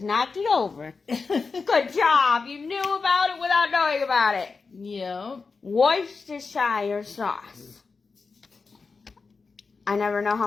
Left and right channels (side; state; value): right; quieter; 4.6 dB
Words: knocked it over. Good job. You knew about it without knowing about it. Yep. Worcestershire sauce. I never know how